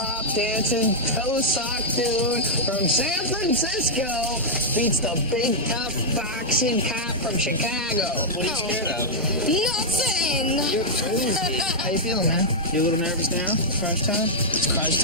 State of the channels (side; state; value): both; normal; correlation -0.06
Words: dancing toe sock dude from San Francisco beats the big tough boxing cop from Chicago. What are you scared of? Nothing. You're crazy. How you feeling, man? You a little nervous now? Crunch time? It's crunch